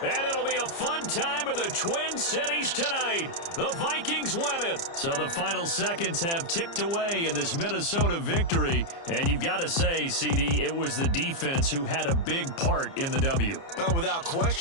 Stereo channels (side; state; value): right; late; 30 ms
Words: And it'll be a fun time of the Twin Cities tonight. The Vikings win it. So the final seconds have ticked away in this Minnesota victory. And you've got to say, CD, it was the defense who had a big part in the W. Well, without